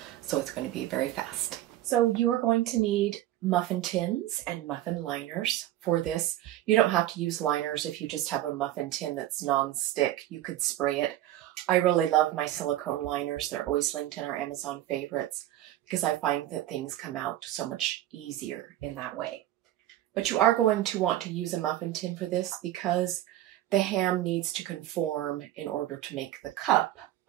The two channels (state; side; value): quieter; left; 13.8 dB